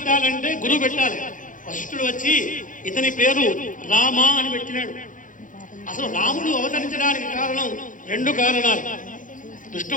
గురువు పెట్టాలి. వశిష్ఠుడు వచ్చి ఇతని పేరు రామ అని పెట్టినాడు. అసలు రాముడు అవతరించడానికి కారణం రెండు కారణాలు.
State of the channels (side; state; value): right; late; 0.38 ms